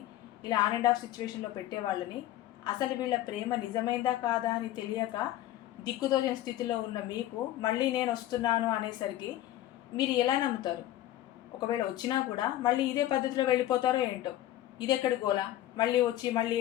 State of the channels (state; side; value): quieter; right; 14.0 dB